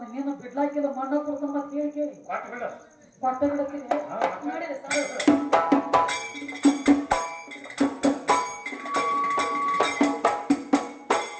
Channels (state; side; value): identical; both; correlation 1.00